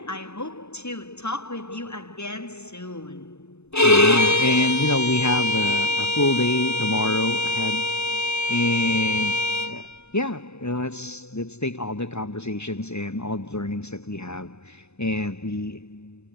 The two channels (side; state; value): right; late; 0.80 ms